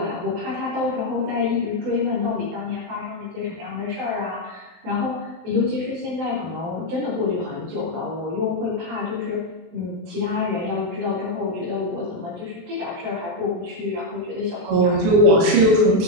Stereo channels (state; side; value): late; left; 23 ms